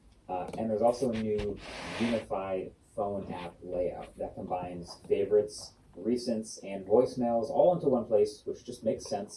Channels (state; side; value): identical; both; correlation 1.00